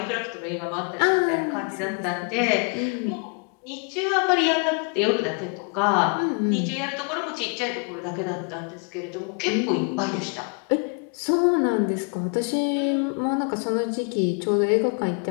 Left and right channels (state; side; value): quieter; right; 38.5 dB